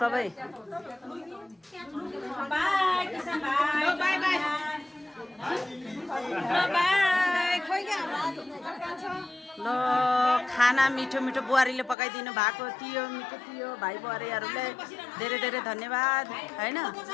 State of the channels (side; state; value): right; drops out; at 12.0 s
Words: ल खाना मिठो मिठो बुहारीले पकाइदिनु भएको थियो मिठो थियो भाइ बुहारीहरूलाई धेरै धेरै धन्यवाद हैन